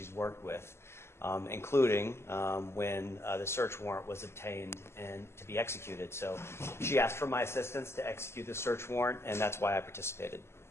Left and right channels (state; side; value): late; right; 0.12 ms